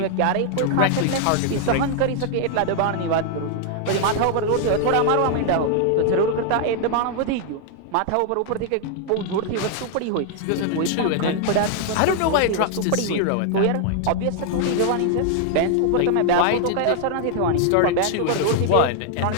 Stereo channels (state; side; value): different; both; correlation 0.00